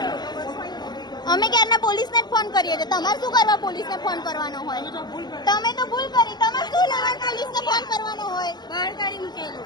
અમે ક્યારના પોલીસને જ ફોન કરીએ છીએ. તમારે શું કરવા પોલીસને ફોન કરવાનો હોય? તમે તો ભૂલ કરી. તમારે શું લેવા પોલીસને ફોન કરવાનો હોય? બહાર કાઢી મૂકેલું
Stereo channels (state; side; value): late; right; 0.21 ms